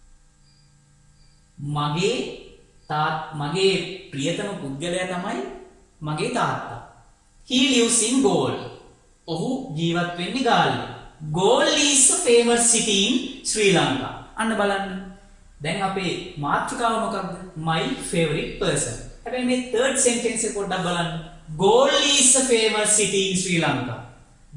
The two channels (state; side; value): identical; both; correlation 1.00